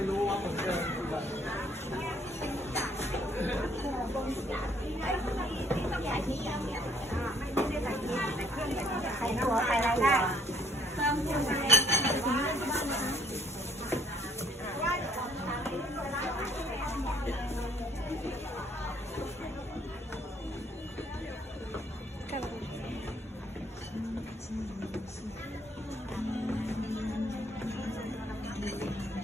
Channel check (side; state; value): both; normal; correlation 0.63